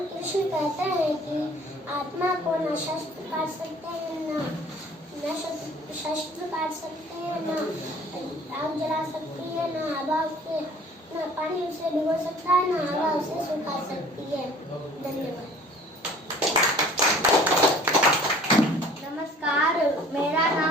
कृष्ण कहते हैं कि आत्मा को न शस्त्र काट सकते हैं, न शस्त्र काट सकते हैं, न आग जला सकती है, न हवा उसे, न पानी उसे भिगो सकता है, न हवा उसे सुखा सकती है। धन्यवाद। नमस्कार, मेरा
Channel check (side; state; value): both; normal; correlation 0.50